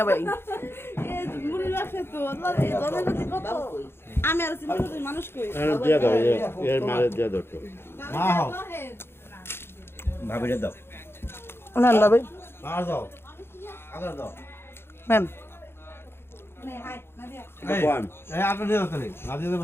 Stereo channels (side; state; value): right; late; 0.11 ms